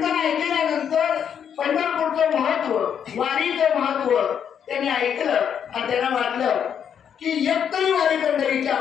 ऐकल्यानंतर पंढरपूरचं महत्व, वारीचं महत्व त्यांनी ऐकलं आणि त्यांना वाटलं की एक तरी वारी पंढरीची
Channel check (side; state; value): right; quieter; 8.2 dB